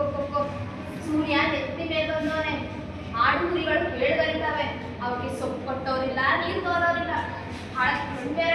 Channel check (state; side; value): identical; both; correlation 1.00